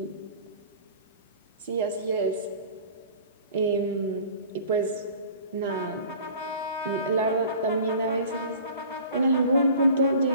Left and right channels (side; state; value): both; inverted; correlation -0.44